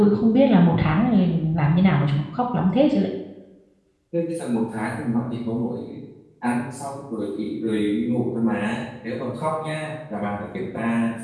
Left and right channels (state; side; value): identical; both; correlation 1.00